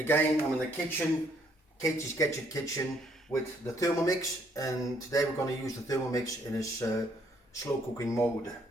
I'm in the kitchen, Katey's Gadget Kitchen, with the Thermomix, and today we're going to use the Thermomix in its slow cooking mode.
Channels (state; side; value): normal; both; correlation 0.67